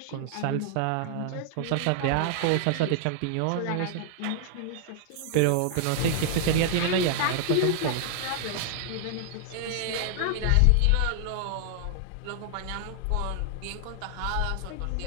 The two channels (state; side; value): different; both; correlation 0.00